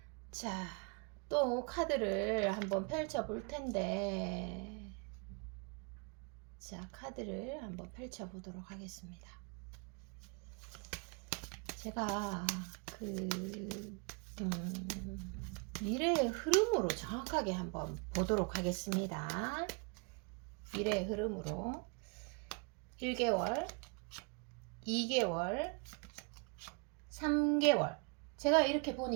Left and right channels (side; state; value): left; quieter; 33.3 dB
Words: 자, 또 카드를 한번 펼쳐 볼 텐데, 자, 카드를 한번 펼쳐 보도록 하겠습니다. 제가 미래의 흐름으로 정확하게 한번 보도록 하겠습니다. 미래의 흐름으로 1개월, 2개월, 3개월. 제가 이렇게